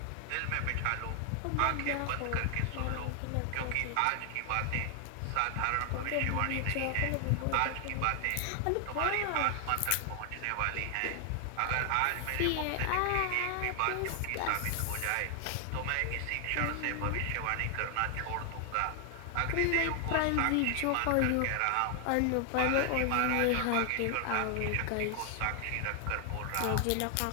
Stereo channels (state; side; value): different; both; correlation 0.00